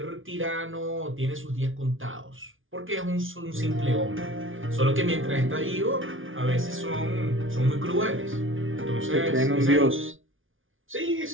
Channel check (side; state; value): left; late; 0.57 ms